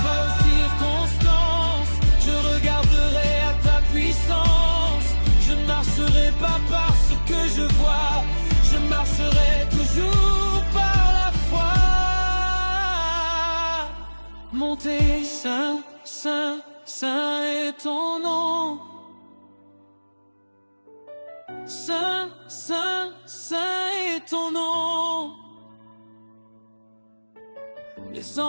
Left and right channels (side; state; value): both; inverted; correlation -1.00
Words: pas aux circonstances, je regarderai à ta puissance. Je ne marcherai pas par ce que je vois, je marcherai toujours par la foi. Montez, saint, saint, saint est ton nom. Saint, saint, saint est ton nom. Les